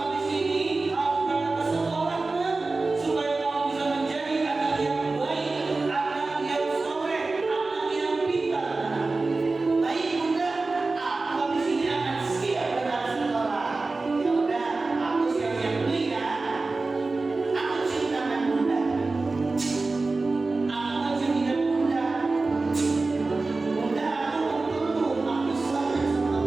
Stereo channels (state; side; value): quieter; left; 3.6 dB